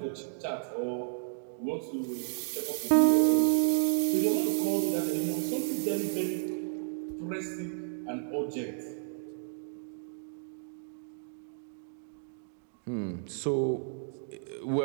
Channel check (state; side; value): silent; left; digital silence